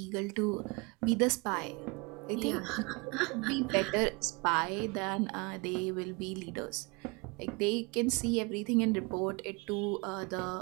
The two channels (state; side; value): quieter; left; 28.7 dB